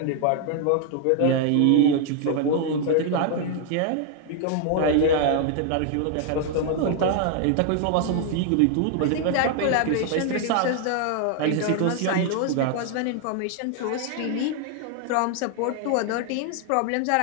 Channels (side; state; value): both; different; correlation 0.00